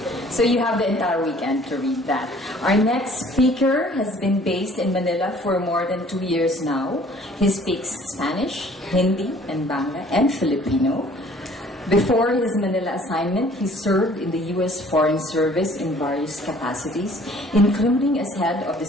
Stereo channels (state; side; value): normal; both; correlation 0.54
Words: So you have the entire weekend to read that. Our next speaker has been based in Manila for more than 2 years now. He speaks Spanish, Hindi, and Bangla, and Filipino. Before his Manila assignment, he served in the U.S. Foreign Service in various capacities, including as head of the